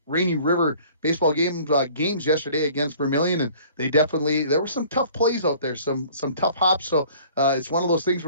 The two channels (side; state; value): both; inverted; correlation -0.51